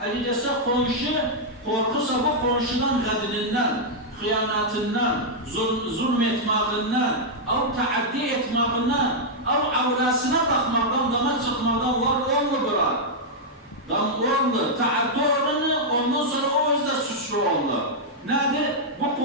Elbette komşu korkusa bu komşudan kadınından, hıyanatından, zulmetmağından, av taaddi etmağından, av avrasına bakmaktan, dama çıkmaktan var olmu bırak. Dam oldu, taaddi oranı ondan sonra o yüzden suçlu oldu. Nedir? Bu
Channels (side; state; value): both; normal; correlation -0.05